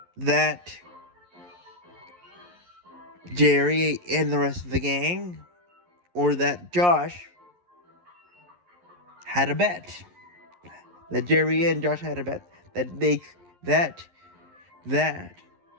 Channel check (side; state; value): left; late; 11 ms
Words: Jerry and the rest of the gang, or that Josh had a bet. That Jerry and Josh had a bet that